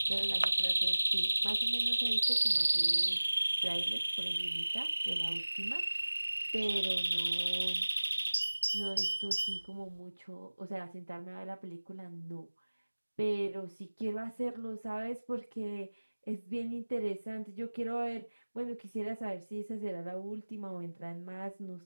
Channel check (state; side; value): inverted; both; correlation -1.00